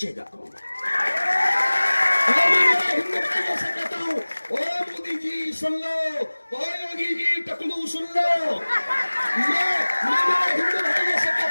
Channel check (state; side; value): inverted; both; correlation -1.00